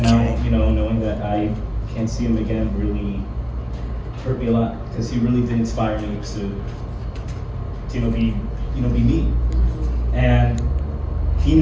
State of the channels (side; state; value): both; identical; correlation 1.00